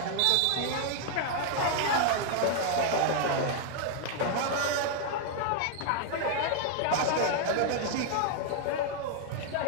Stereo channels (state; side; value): different; both; correlation 0.00